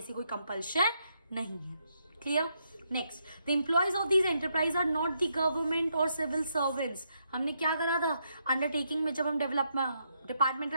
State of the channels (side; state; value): both; inverted; correlation -0.78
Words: कोई कंपल्शन नहीं है। Clear? Next, the employees of these enterprise are not the government और सिविल सर्वेंट्स। हमने क्या करा था अंडरटेकिंग में, जब हम डिपार्टमेंटल